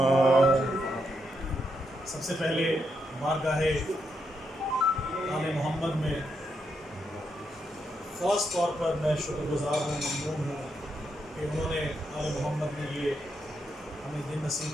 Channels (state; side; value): normal; both; correlation 0.81